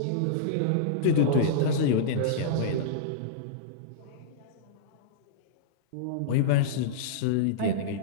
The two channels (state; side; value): different; both; correlation -0.03